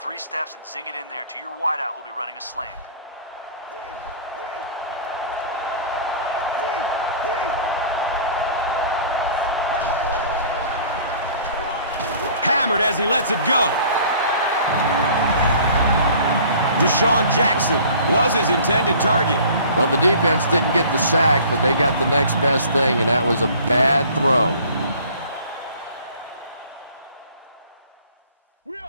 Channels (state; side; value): inverted; both; correlation -0.48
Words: steps and zing it in there to your wideout who'll be running a slant. Hammered as he lets it go. Deshaun Jackson was his intended target. Well, the defense didn't get the sack, but they got the next best thing, and that was a bad throw.